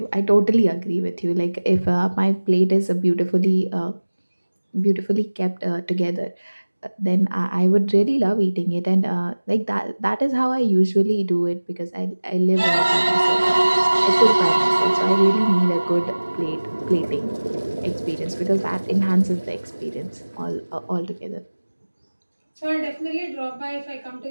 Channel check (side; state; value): both; inverted; correlation -1.00